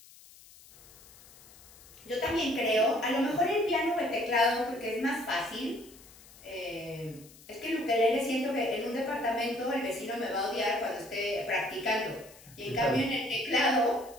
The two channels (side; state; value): left; noise; hiss, 22 dB below the sound